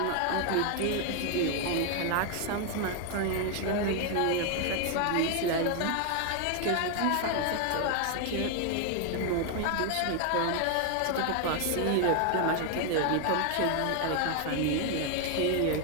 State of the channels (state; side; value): different; both; correlation 0.00